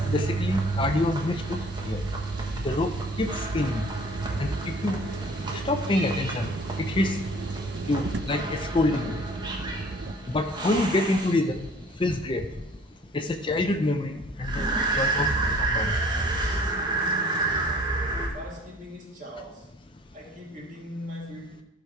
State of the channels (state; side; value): normal; both; correlation 0.53